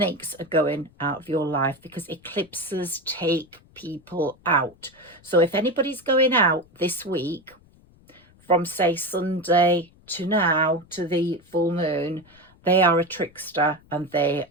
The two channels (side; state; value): left; noise; rumble, 29 dB below the sound